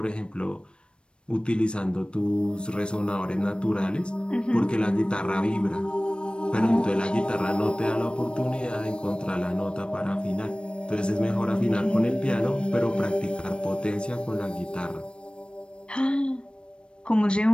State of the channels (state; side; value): late; right; 0.055 ms